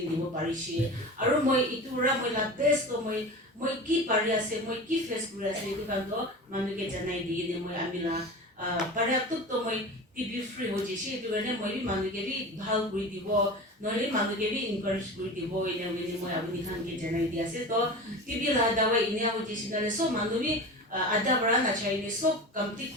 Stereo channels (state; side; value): normal; both; correlation 0.32